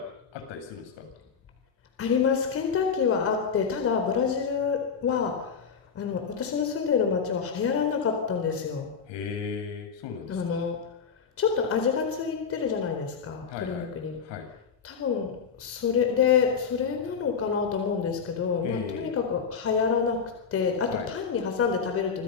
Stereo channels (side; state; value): right; quieter; 6.2 dB